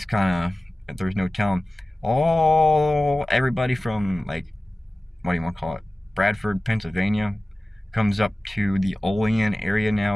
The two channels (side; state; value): both; normal; correlation 0.97